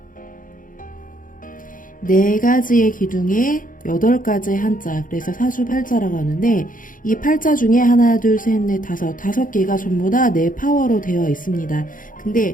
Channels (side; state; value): right; late; 0.39 ms